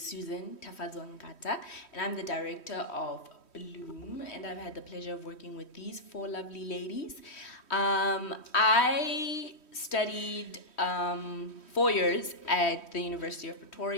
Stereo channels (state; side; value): late; right; 3.1 ms